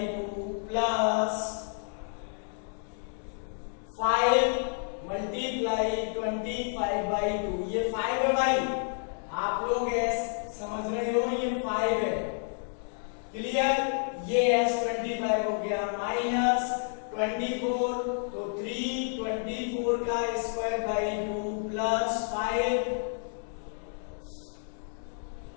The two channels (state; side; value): silent; right; 58 dB below the other